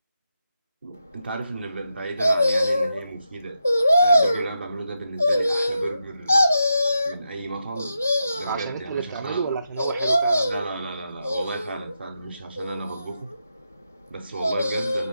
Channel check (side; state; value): both; inverted; correlation -0.86